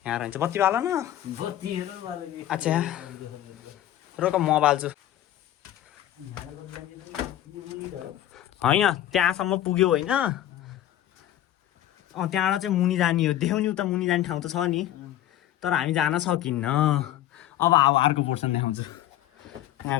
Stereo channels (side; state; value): right; quieter; 12.5 dB